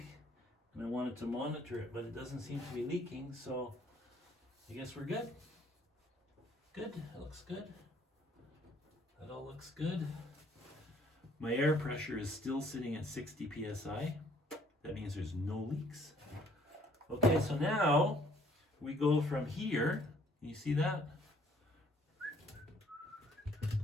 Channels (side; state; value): both; normal; correlation 0.61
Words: and I wanted to monitor it, but it doesn't seem to be leaking, so I guess we're good. Good, that looks good. That all looks good. My air pressure is still sitting at 60 psi. That means there's no leaks. Okay, so now we go from here. You see that?